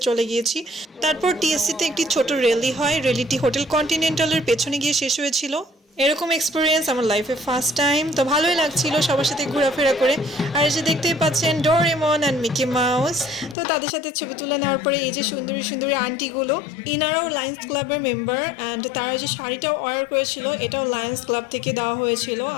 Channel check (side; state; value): right; drops out; at 13.6 s